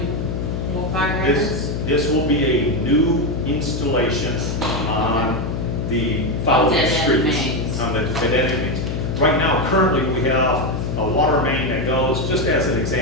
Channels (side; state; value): left; noise; hum, 3 dB below the sound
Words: fire hydrants? This will be a new installation on the following Dead-end streets. mains. On the dead-end mains. Right now, currently, we have a water main that goes, just as an